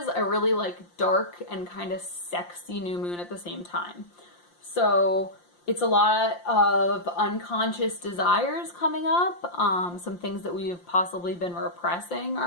a really dark and kind of sexy new moon at the same time. So it's a lot of unconscious desires coming up. Some things that we've possibly been repressing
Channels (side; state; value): right; late; 5.7 ms